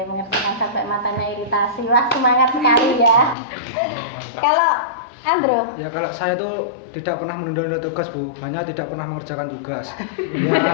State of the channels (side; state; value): right; drops out; at 3.4 s